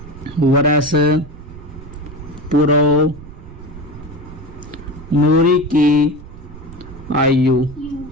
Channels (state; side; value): noise; right; rumble, 15 dB below the sound